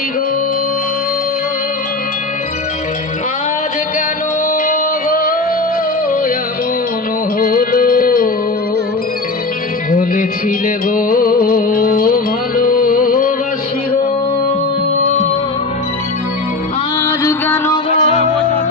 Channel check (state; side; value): quieter; right; 3.4 dB